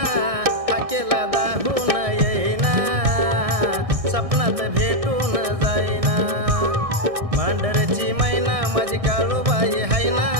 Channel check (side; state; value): left; late; 1.6 ms